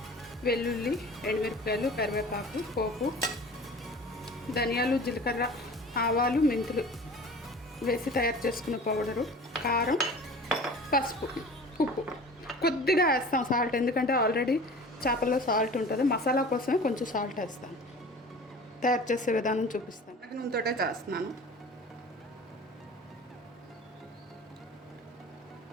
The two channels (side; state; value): both; normal; correlation 0.40